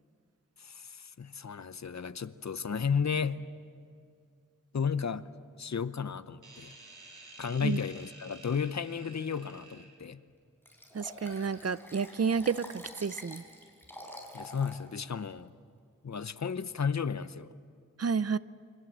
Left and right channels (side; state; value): both; normal; correlation 0.35